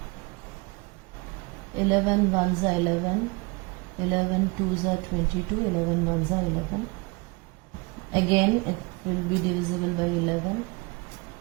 8. 11 ones are 11, 11 twos are 22, 11 ones are 11. Again it will be divisible by 11.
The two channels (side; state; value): left; quieter; 27.3 dB